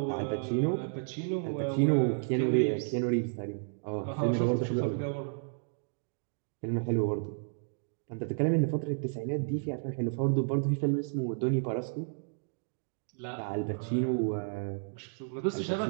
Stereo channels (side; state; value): left; silent; digital silence